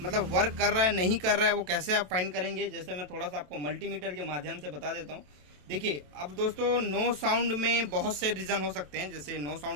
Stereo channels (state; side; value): late; left; 27 ms